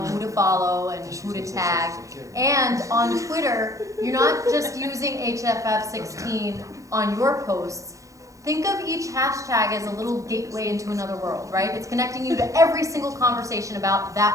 to follow and who to tag. And on Twitter, you're not just using HFF16 on your posts. Think of each hashtag as a little gateway into another world, right? It's connecting you to every single conversation about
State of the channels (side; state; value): left; late; 0.16 ms